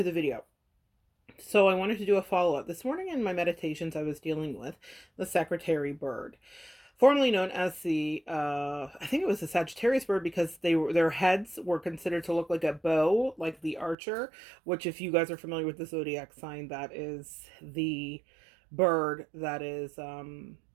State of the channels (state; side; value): drops out; left; at 14.0 s